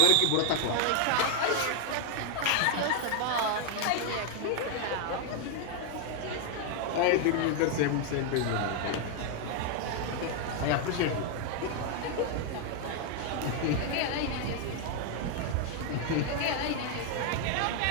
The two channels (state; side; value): different; both; correlation 0.00